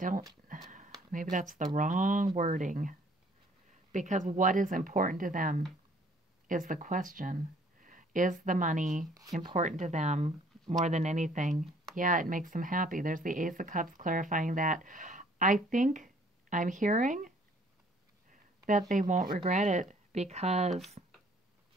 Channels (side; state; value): both; normal; correlation 0.59